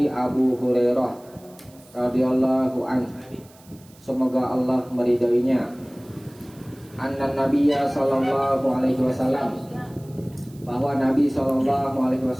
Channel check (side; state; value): right; noise; hiss, 27 dB below the sound